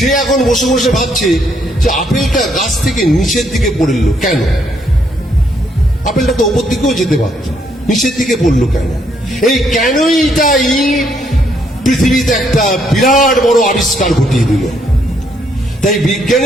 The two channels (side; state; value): both; normal; correlation 0.72